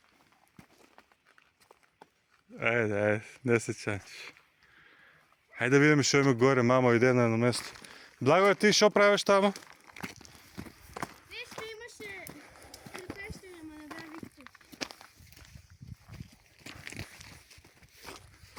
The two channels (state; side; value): identical; both; correlation 1.00